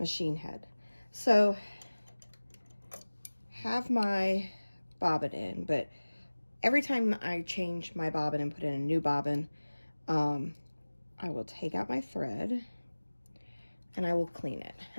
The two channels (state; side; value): inverted; both; correlation -1.00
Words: head. So, have my bobbin in, but every time I change my bobbin and put in a new bobbin, I will take out my thread and I will clean it.